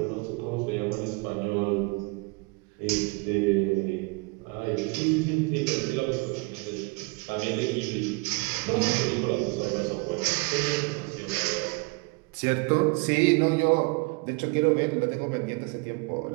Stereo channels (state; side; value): quieter; left; 29.1 dB